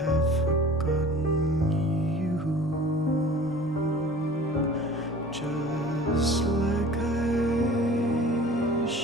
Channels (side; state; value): both; normal; correlation 0.44